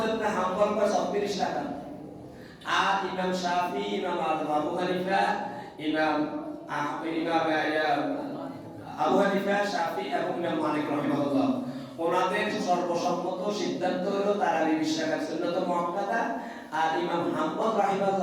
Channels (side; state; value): both; identical; correlation 1.00